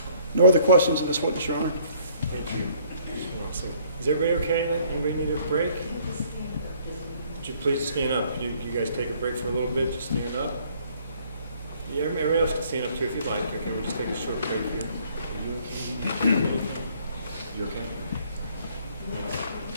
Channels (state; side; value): inverted; both; correlation -0.61